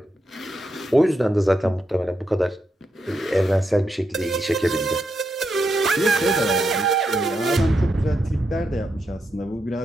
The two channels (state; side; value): normal; both; correlation 0.83